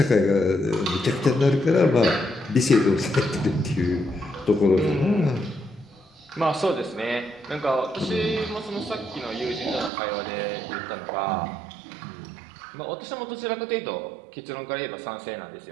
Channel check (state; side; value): drops out; left; at 9.9 s